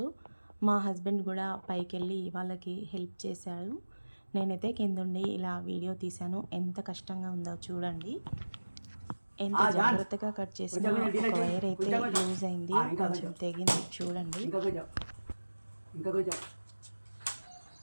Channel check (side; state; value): both; inverted; correlation -1.00